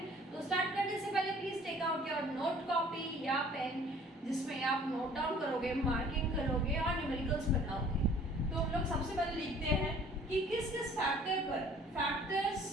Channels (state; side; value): normal; both; correlation 0.52